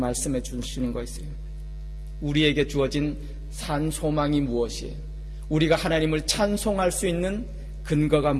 주시는 거 있어요. 우리에게 주어진 산 소망이 무엇이에요? 우리가 하나님을 찬송할 수 있는 근거가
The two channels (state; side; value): identical; both; correlation 1.00